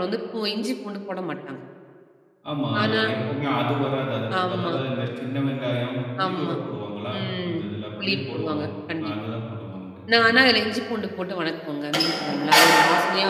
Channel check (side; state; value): both; identical; correlation 1.00